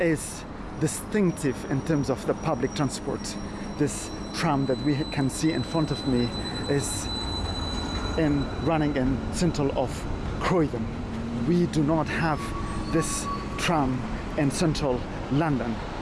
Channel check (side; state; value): both; identical; correlation 1.00